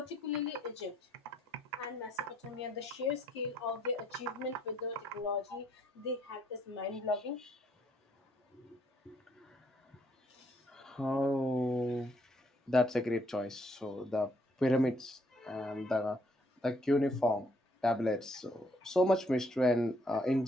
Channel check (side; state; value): both; normal; correlation 0.69